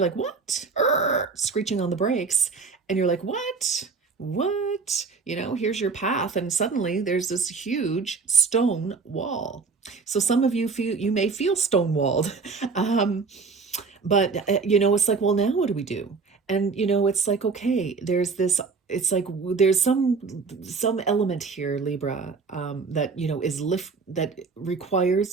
like, what? Screeching on the brakes. And you're like, what? Here's your path. And suddenly there's this huge stone wall. So some of you may feel stonewalled. But, it's like, well, now what do we do? And, it's like, okay, it's like there's some element here, Libra, that, that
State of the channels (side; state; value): left; quieter; 4.7 dB